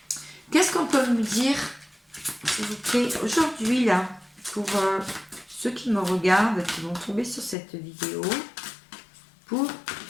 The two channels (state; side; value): drops out; right; at 7.6 s